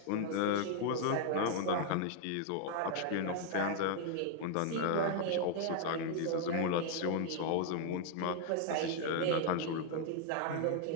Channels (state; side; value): different; both; correlation 0.00